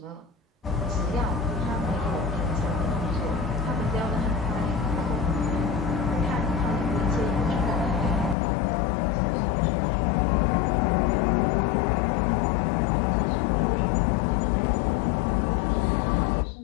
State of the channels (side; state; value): right; drops out; at 8.3 s